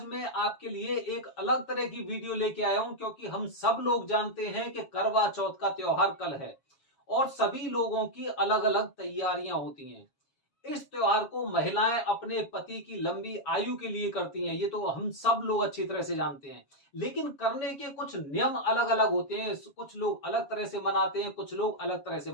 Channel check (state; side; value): late; right; 7.2 ms